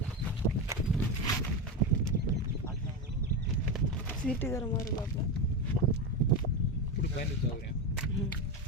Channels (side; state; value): both; normal; correlation 0.16